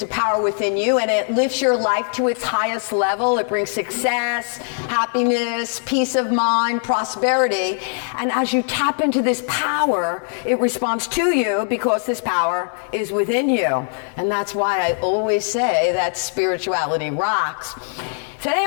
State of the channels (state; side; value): silent; right; 57 dB below the other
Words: a power within you and it lifts your life to its highest level. It brings success, happiness, peace of mind, prosperity. And as you tap into this power, it responds to you because this power is within you. And that's why I always say that spirituality rocks. Today